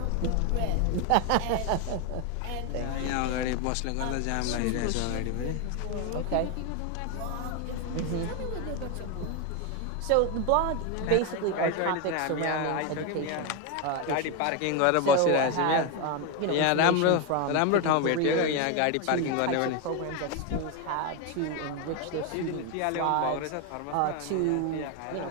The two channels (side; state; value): both; different; correlation 0.02